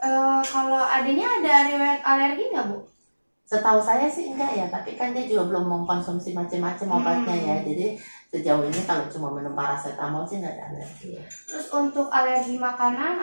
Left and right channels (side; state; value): both; inverted; correlation -1.00